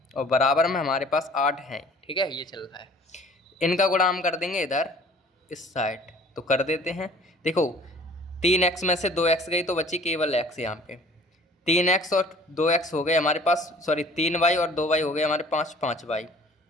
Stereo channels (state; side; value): normal; both; correlation 0.50